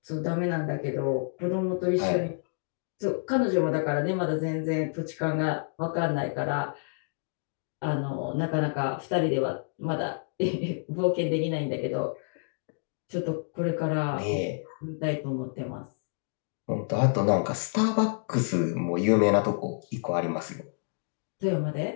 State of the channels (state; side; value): silent; right; digital silence